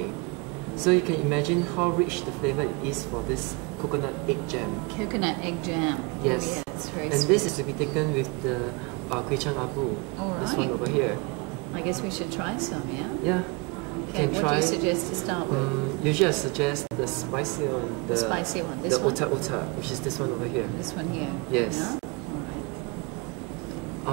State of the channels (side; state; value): left; quieter; 28.2 dB